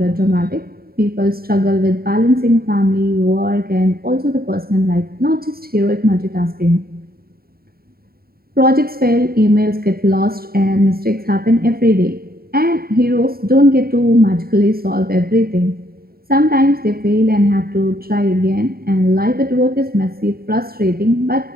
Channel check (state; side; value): late; left; 0.44 ms